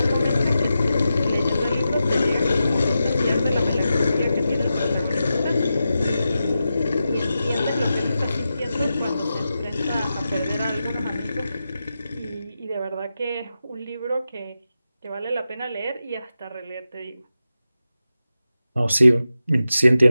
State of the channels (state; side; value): inverted; both; correlation -0.90